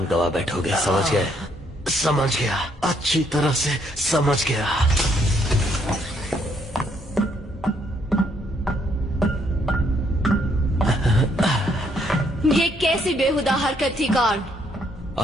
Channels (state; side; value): normal; both; correlation 0.70